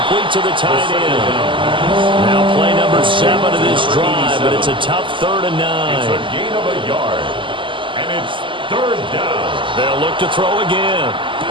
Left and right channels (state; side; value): late; left; 0.25 ms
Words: to the tight end. Now play number 7 of this drive, but it's a tough 3rd and 9. It's a gain of a yard, and it's 3rd down. They'll look to throw again.